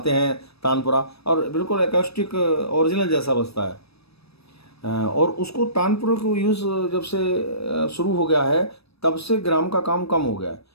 हैं तानपुरा, और बिल्कुल एकॉस्टिक ओरिजिनल जैसा बजता है। और उसको तानपुरे को यूज़ जब से शुरू हो गया है, तब से ग्राम का काम कम हो गया है।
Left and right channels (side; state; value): right; late; 0.78 ms